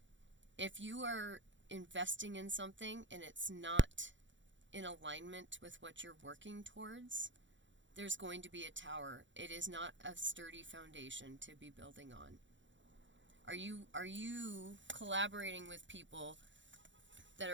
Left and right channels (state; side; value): late; left; 0.54 ms